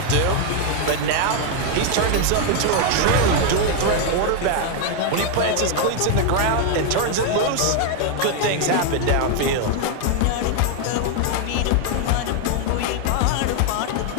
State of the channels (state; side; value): different; both; correlation 0.00